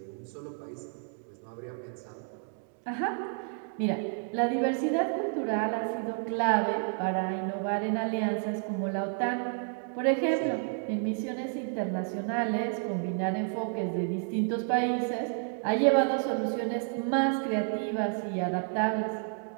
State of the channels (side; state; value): left; silent; 57 dB below the other